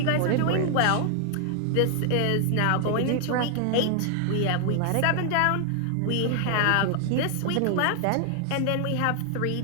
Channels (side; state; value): both; different; correlation 0.00